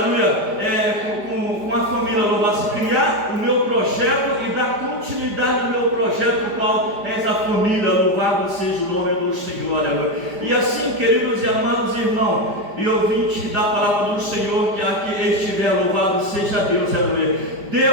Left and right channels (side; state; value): left; late; 5.0 ms